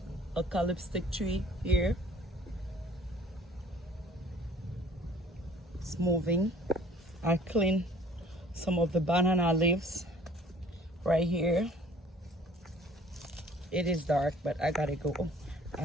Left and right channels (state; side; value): normal; both; correlation 0.52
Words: eucalyptus tree here. It's moving. I clean some of the banana leaves right here. It is dark, but I gotta go.